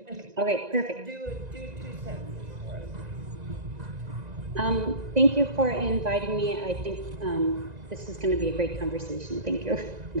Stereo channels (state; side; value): late; left; 1.9 ms